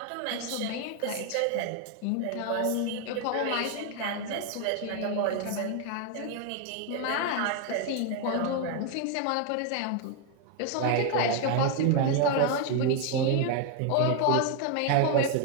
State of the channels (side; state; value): both; different; correlation 0.01